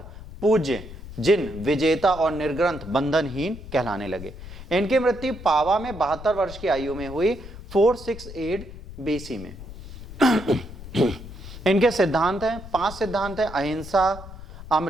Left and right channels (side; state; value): left; noise; rumble, 13 dB below the sound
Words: पूज्य, जिन, विजेता और निर्ग्रंथ बंधनहीन कहलाने लगे। इनकी मृत्यु पावा में 72 वर्ष की आयु में हुई, 468 बीसी में। इनके सिद्धांत हैं, 5 सिद्धांत हैं: अहिंसा,